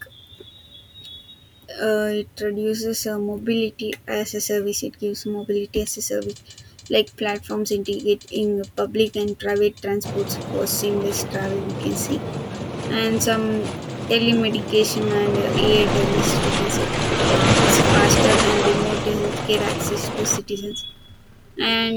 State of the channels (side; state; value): both; identical; correlation 1.00